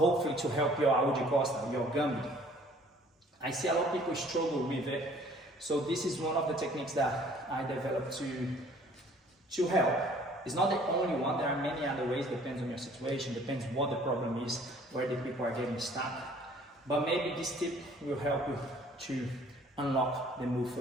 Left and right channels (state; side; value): normal; both; correlation 0.55